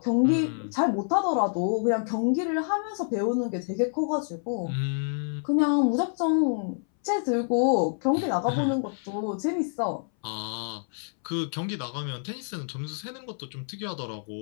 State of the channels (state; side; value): silent; right; 60 dB below the other